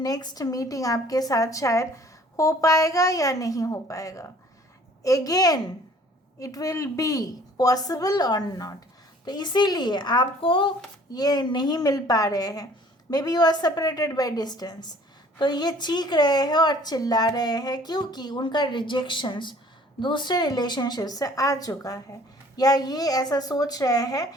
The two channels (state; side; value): normal; both; correlation 0.53